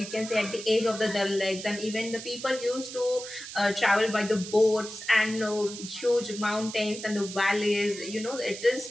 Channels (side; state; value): right; noise; hiss, 11 dB below the sound